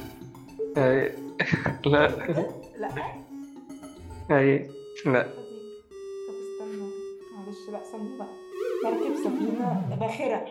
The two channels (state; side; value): identical; both; correlation 1.00